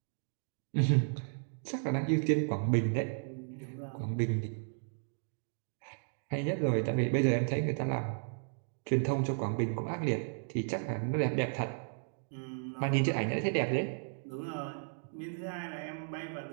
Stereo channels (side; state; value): left; silent; digital silence